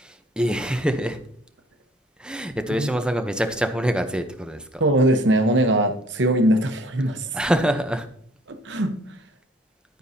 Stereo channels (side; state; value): both; normal; correlation 0.57